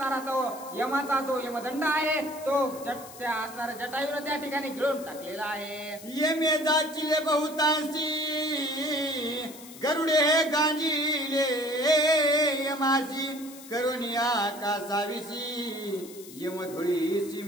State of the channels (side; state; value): left; noise; hiss, 17 dB below the sound